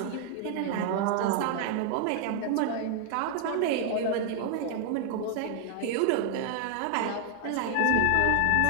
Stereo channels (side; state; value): both; different; correlation 0.00